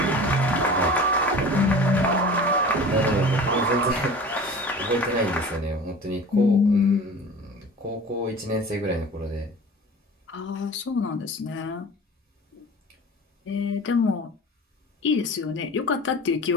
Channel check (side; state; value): both; normal; correlation 0.39